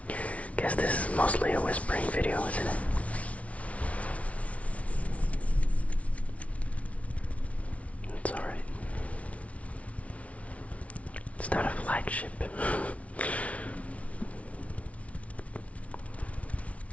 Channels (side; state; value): right; late; 0.065 ms